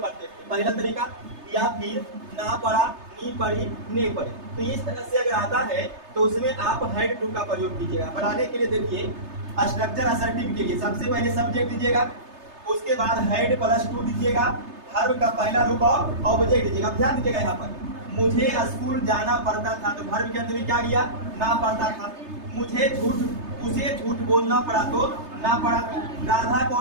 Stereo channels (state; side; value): late; left; 3.3 ms